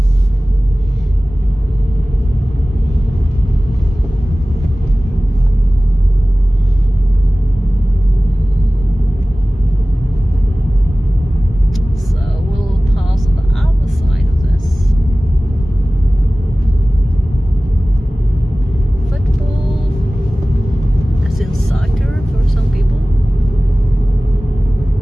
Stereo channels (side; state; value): both; normal; correlation 0.98